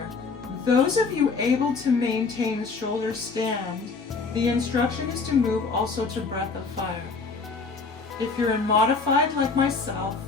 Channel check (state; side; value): quieter; right; 4.4 dB